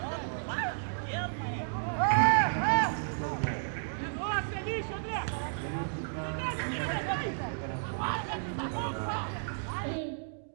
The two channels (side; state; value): left; silent; digital silence